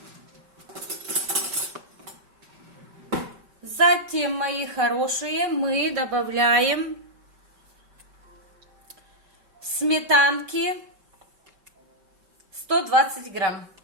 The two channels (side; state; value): left; late; 5.2 ms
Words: мои хорошие, мы добавляем сметанки 120 грамм.